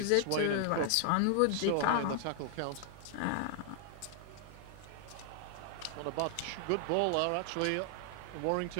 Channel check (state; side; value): different; both; correlation 0.00